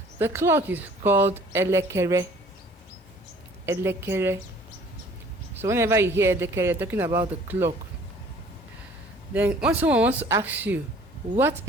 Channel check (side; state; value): both; normal; correlation 0.53